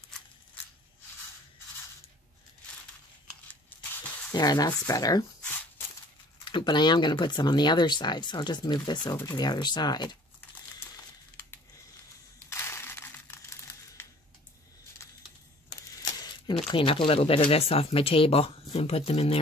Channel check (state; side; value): normal; both; correlation 0.52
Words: There, that's better. But I am going to put some on the other side, so I'll just move this over to the other side. I'm going to clean up a little bit of this off my table and put them in